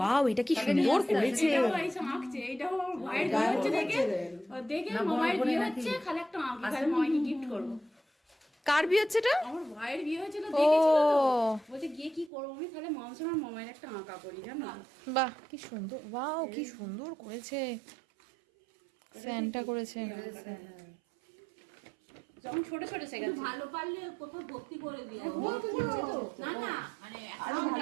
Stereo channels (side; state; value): left; drops out; at 12.3 s